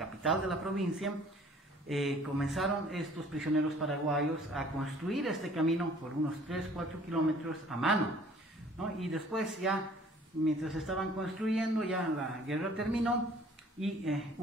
de la provincia, comenzaron estos prisioneros paraguayos a construir este camino por unos 3-4 kilómetros a mano, ¿no? Y después ya, mientras estaban construyendo, ya la guerra terminó y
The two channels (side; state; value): both; normal; correlation 0.54